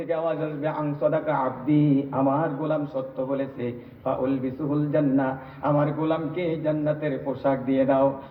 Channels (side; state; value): both; identical; correlation 1.00